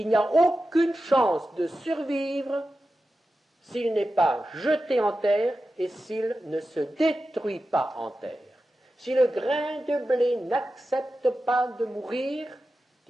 n'y a aucune chance de survivre s'il n'est pas jeté en terre et s'il ne se détruit pas en terre. Si le grain de blé n'accepte pas de mourir,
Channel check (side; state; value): both; normal; correlation 0.92